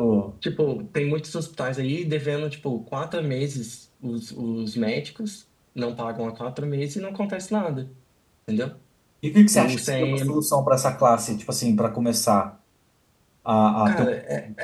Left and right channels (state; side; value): identical; both; correlation 1.00